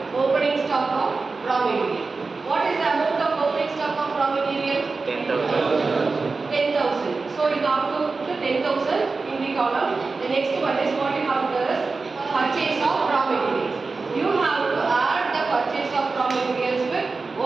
opening stock of raw material. What is the amount of opening stock of raw material? 10,000. 10,000. So you have to put 10,000 in the column. The next one is what you have to do is purchase of raw materials. You have to add the purchase of raw materials with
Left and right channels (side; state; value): left; quieter; 4.1 dB